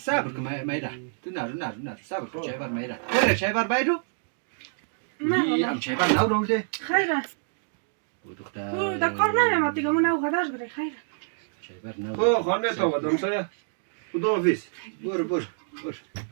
کن مایرا تو نه صبر کن چای بر مایرا برای چای بر بایرو نه چای بر نو رولده خیره او دختر او دا کار نمیامد دیگه من او غداش بره خیره چای بر نو خو خانه تو ودم سایا خدا حافظ بر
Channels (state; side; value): silent; left; digital silence